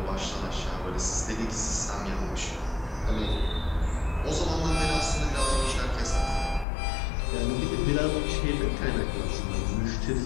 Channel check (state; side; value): drops out; right; at 6.7 s